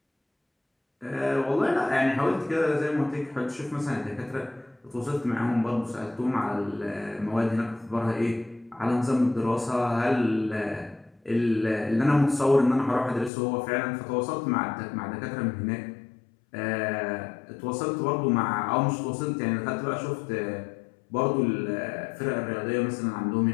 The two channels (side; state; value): right; drops out; at 13.3 s